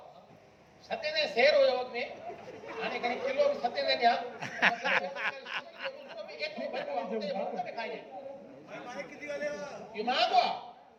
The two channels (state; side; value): identical; both; correlation 1.00